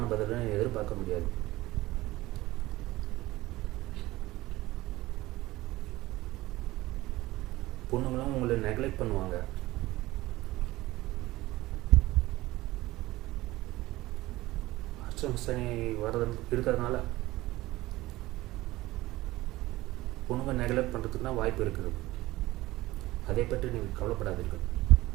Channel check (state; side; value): quieter; left; 18.1 dB